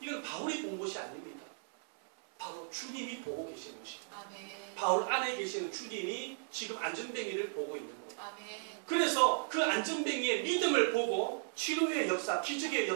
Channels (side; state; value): left; silent; 54 dB below the other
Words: 바울이 본 것이 아닙니다. 바로 주님이 보고 계시는 것입니다. 바울 안에 계시는 주님이 지금 안전뱅이를 보고 있는 거예요. 그래서 그 안전뱅이의 믿음을 보고 치료의 역사, 기적의